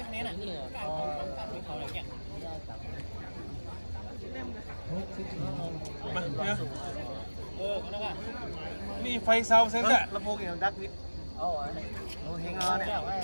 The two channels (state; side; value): inverted; both; correlation -1.00